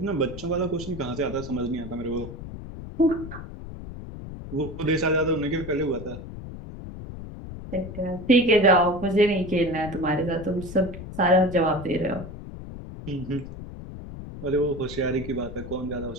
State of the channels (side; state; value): left; noise; rumble, 11 dB below the sound